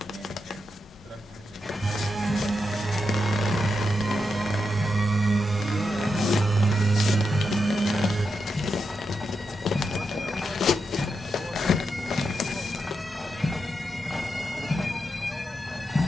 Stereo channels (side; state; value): both; normal; correlation 0.86